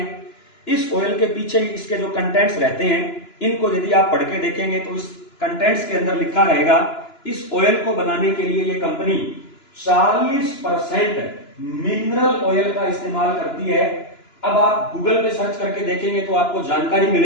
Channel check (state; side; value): late; right; 2.9 ms